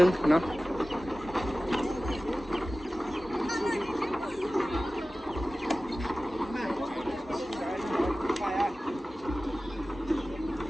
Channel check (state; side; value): normal; both; correlation 0.96